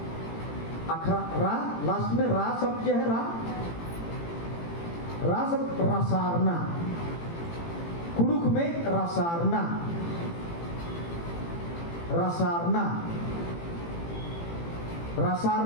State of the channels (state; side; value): late; right; 18 ms